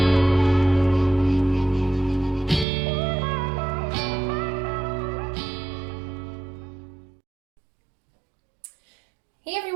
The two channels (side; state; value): left; drops out; at 2.7 s